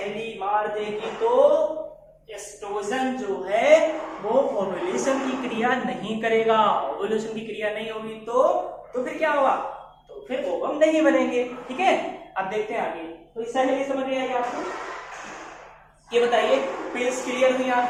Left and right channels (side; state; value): both; identical; correlation 1.00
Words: मार देगी तो एस्ट्रोजन जो है वो ओव्यूलेशन की क्रिया नहीं करेगा। ओव्यूलेशन की क्रिया नहीं होगी तो फिर क्या होगा, तो फिर ओवम नहीं बनेंगे, ठीक है। अब देखते हैं आगे। तो इस सहेली समझ में आएगी आपको, ये बताइए, पिल्स क्लियर हुई